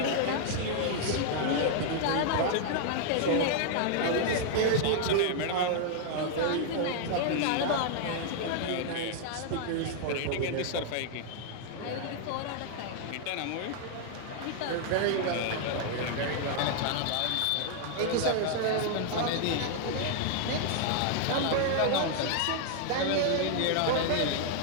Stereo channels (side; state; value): both; different; correlation 0.00